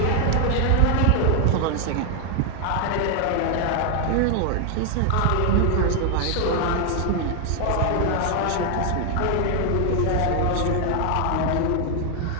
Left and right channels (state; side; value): different; both; correlation 0.00